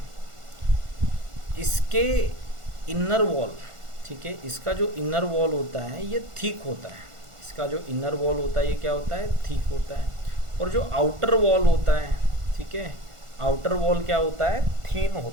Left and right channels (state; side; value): late; left; 1.5 ms